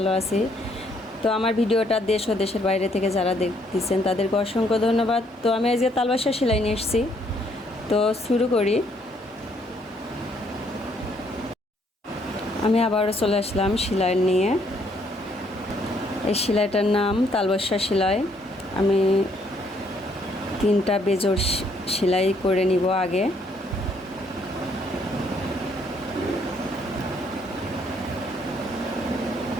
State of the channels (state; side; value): normal; both; correlation 0.68